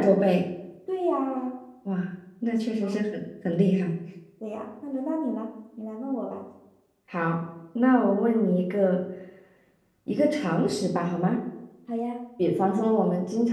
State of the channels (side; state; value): both; identical; correlation 1.00